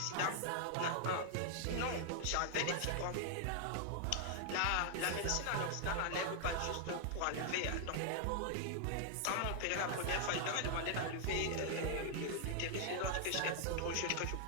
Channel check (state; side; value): different; both; correlation 0.00